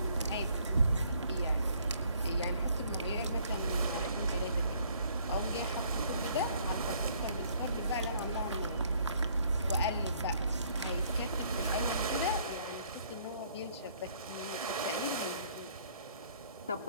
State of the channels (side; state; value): both; inverted; correlation -0.62